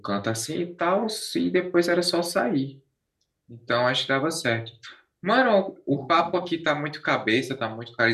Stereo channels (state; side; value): identical; both; correlation 1.00